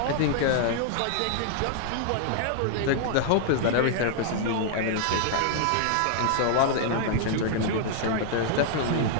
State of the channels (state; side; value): different; both; correlation 0.00